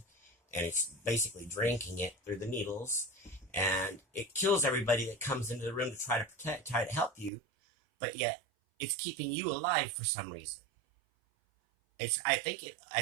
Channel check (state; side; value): drops out; left; at 7.3 s